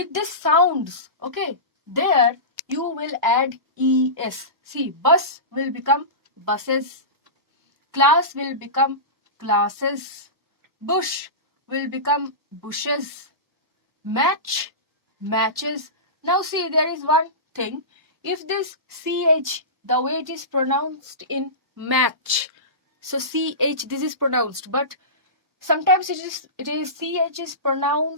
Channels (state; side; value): late; left; 1.1 ms